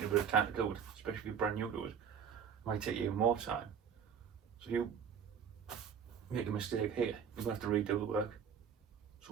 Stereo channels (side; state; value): left; quieter; 7.4 dB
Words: a bit of time to do it, especially if you're brand new to it. It might take you even more time. So if you make a mistake here, you're going to have to redo the work.